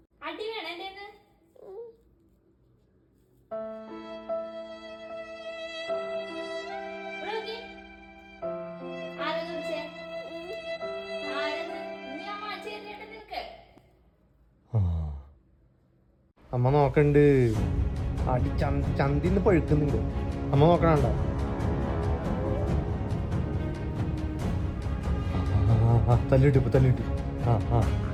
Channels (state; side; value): identical; both; correlation 1.00